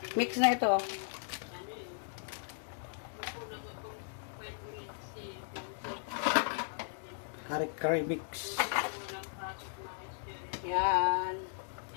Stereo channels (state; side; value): silent; right; digital silence